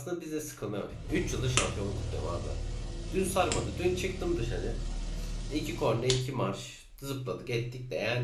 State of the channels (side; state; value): both; identical; correlation 1.00